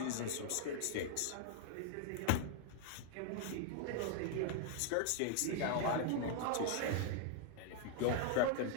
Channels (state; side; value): different; both; correlation 0.00